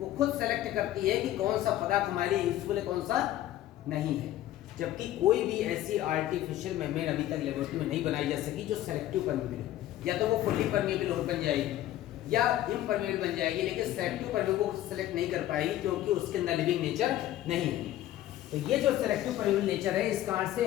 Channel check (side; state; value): right; quieter; 13.6 dB